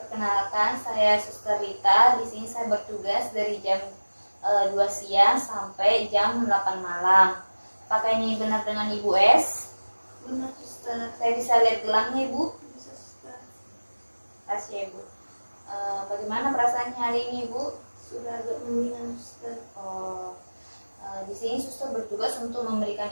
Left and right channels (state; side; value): inverted; both; correlation -1.00